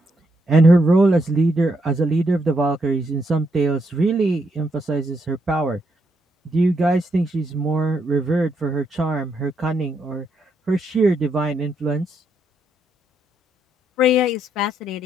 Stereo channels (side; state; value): both; normal; correlation 0.77